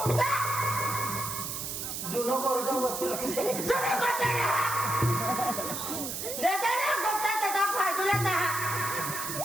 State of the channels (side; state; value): right; noise; hiss, 5 dB below the sound